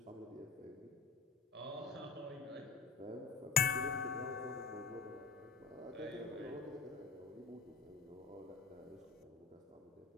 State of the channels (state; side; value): quieter; right; 4.9 dB